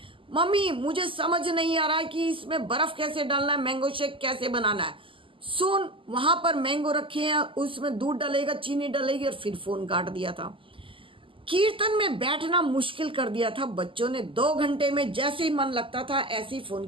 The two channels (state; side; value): late; left; 0.25 ms